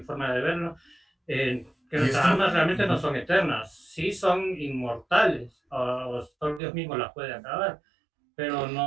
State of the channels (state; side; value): drops out; left; at 6.6 s